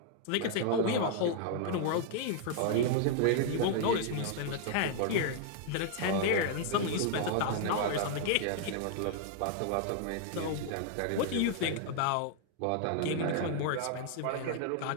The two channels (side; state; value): both; different; correlation 0.00